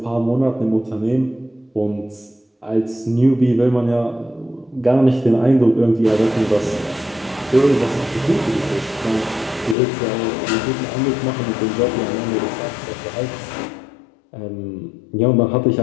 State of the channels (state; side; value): drops out; right; at 9.8 s